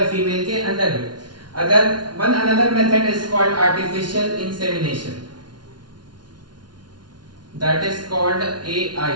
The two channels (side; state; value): left; late; 0.70 ms